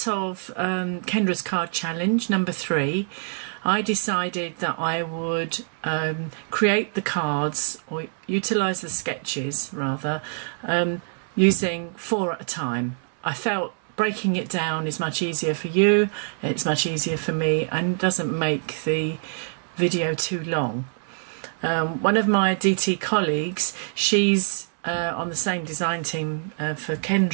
of Kendras Card Challenge, number 3. I decided that I would create the cards, or utilise the sketches rather, using 4 at a time. I felt breaking it down is much easier for you, it's much easier for me, and doesn't make the video too long. One of my DT colleagues, she's on the same design team for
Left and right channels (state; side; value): silent; left; digital silence